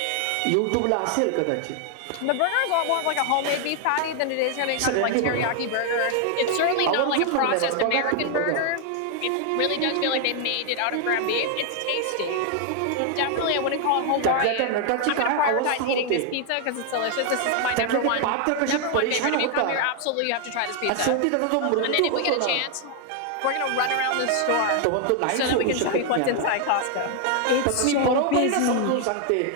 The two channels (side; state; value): both; different; correlation 0.00